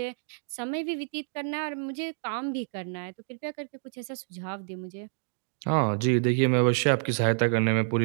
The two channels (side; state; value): left; silent; digital silence